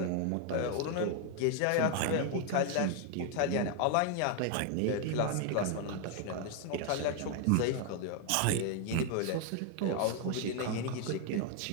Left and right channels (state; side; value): different; both; correlation 0.00